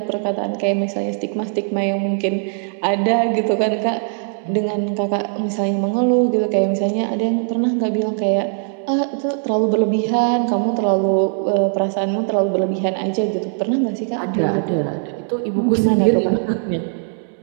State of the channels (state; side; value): silent; left; 62 dB below the other